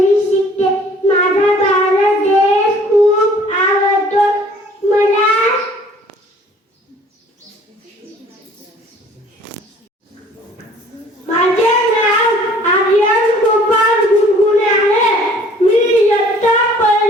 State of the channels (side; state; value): both; normal; correlation 0.54